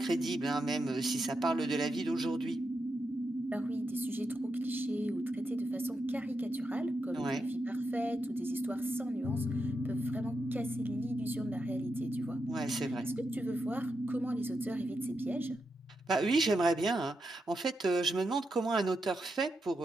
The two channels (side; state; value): both; normal; correlation 0.85